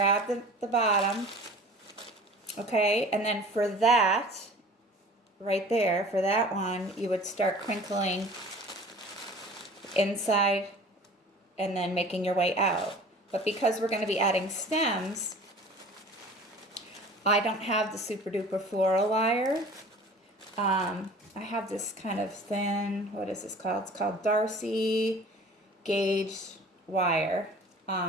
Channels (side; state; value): both; normal; correlation 0.44